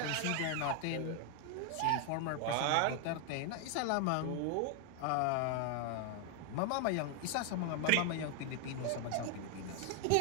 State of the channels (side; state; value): both; different; correlation 0.00